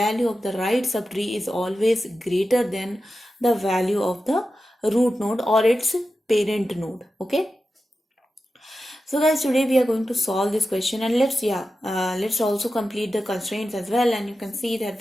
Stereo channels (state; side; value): normal; both; correlation 0.92